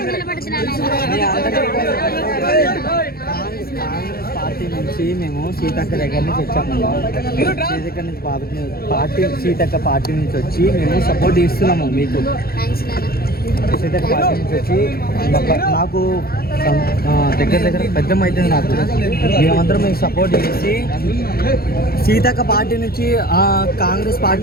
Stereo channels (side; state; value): right; late; 0.44 ms